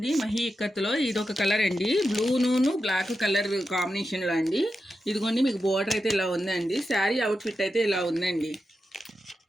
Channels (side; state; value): both; normal; correlation 0.89